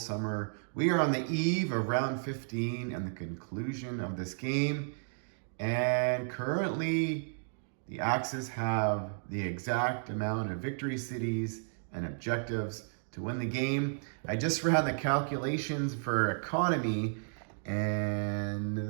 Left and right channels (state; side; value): silent; left; digital silence